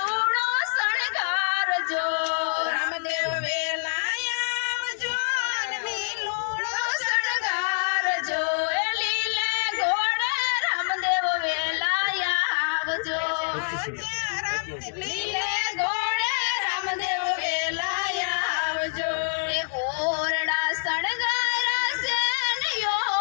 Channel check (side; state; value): right; silent; digital silence